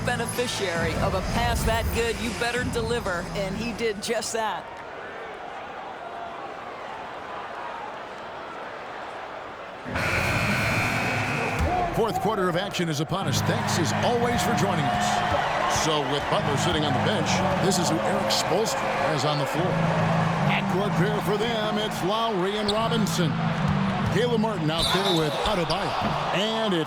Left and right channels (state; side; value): identical; both; correlation 1.00